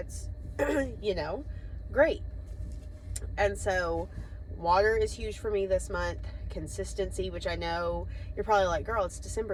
you know, great. And so water is huge for me this month. Consistency, which I know you're probably like, girl, it's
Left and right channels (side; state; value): both; identical; correlation 1.00